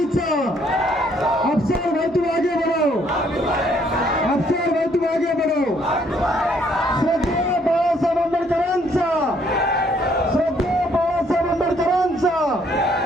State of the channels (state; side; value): normal; both; correlation 0.66